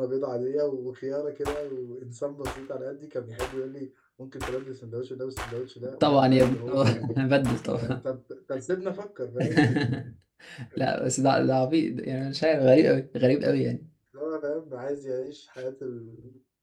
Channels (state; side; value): identical; both; correlation 1.00